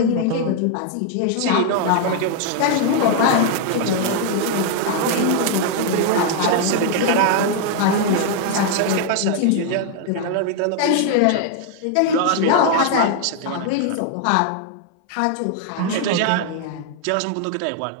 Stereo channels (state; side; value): different; both; correlation 0.00